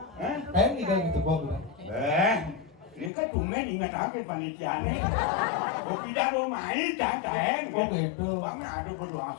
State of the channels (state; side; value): drops out; right; at 3.1 s